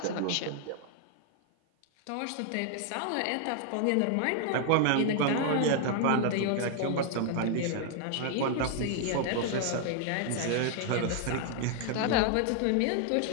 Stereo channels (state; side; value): different; both; correlation 0.00